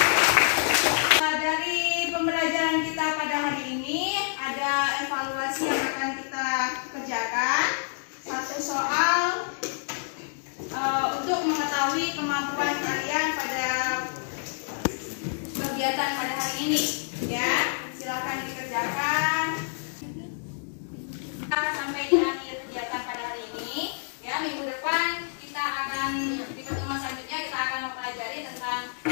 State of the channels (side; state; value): right; silent; digital silence